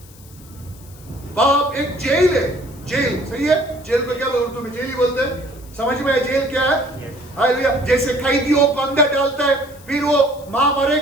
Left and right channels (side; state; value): left; noise; hiss, 23 dB below the sound